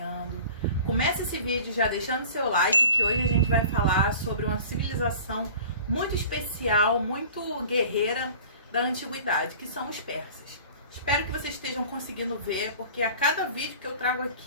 Começa esse vídeo já deixando seu like, que hoje a gente vai falar sobre uma civilização muito especial, muito guerreira da antiguidade, que são os persas. Espero que vocês estejam conseguindo ver, porque a cada vídeo que eu trago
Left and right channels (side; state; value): both; inverted; correlation -0.43